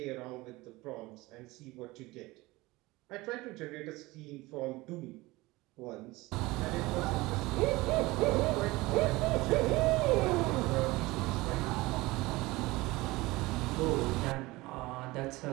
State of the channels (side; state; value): left; quieter; 20.8 dB